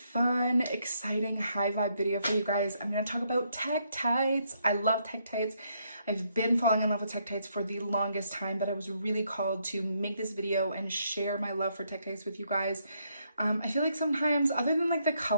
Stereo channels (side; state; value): both; inverted; correlation -0.74